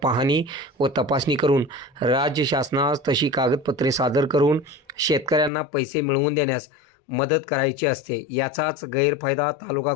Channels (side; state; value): right; drops out; at 5.5 s